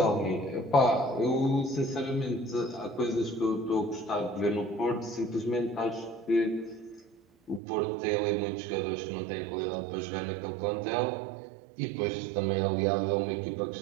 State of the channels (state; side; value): drops out; left; at 7.6 s